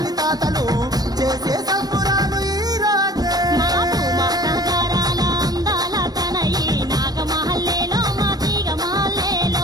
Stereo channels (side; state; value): left; late; 0.19 ms